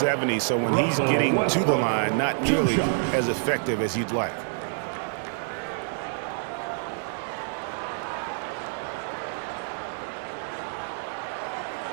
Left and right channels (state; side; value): silent; left; digital silence